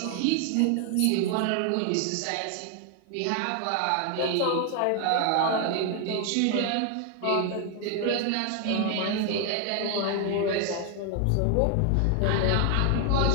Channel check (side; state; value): both; different; correlation 0.00